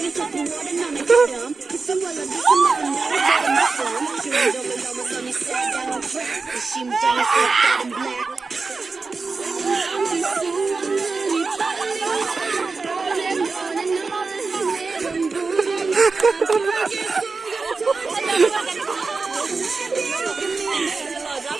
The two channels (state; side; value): quieter; left; 4.2 dB